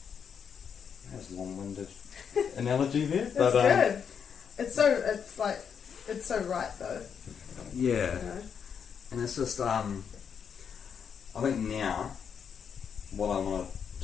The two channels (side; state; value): right; quieter; 7.2 dB